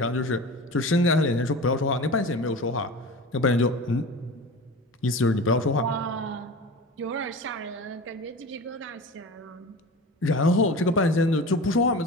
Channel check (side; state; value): both; normal; correlation 0.33